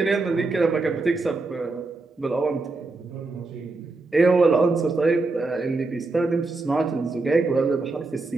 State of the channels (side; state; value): left; quieter; 3.5 dB